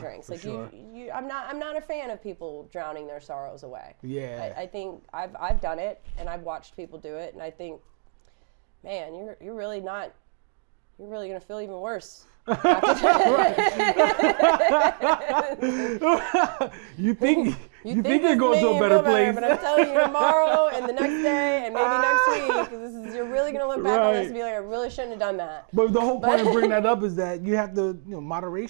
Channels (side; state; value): left; silent; 56 dB below the other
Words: For sure. I'm not a fan of people drowning their sorrows away. Yeah. I think I've done it, and I've watched people do it, and I think, man, you're really not. You're really gonna feel even worse. Right. You think you're going to a better place. Tomorrow and the next day, and you're really gonna look back and feel like I really shouldn't have done that. But the whole point of bringing that up is that you have to,